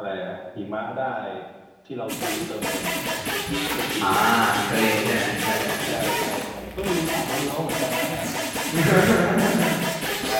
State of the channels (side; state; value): both; identical; correlation 1.00